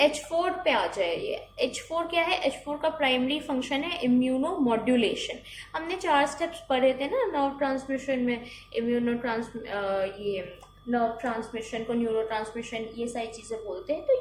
H4 पे आ जाए, ये H4 क्या है? H4 का प्राइमरी फंक्शन है इम्यूनो मॉड्यूलेशन। हमने 4 स्टेप्स पढ़े थे ना नर्व ट्रांसमिशन में, ये नर्व ट्रांसमिशन को न्यूरो ट्रांसमिशन, ये सारी चीज़ें बोलते हैं। तो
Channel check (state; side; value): identical; both; correlation 1.00